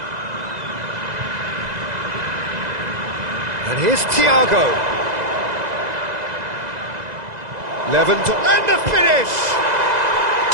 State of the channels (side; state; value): left; late; 2.0 ms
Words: And here's Thiago. Lewandowski, and the finish!